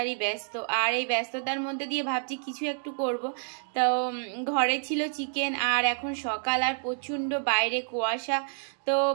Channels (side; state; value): left; silent; digital silence